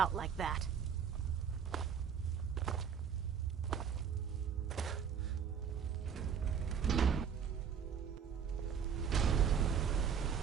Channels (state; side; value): quieter; left; 7.5 dB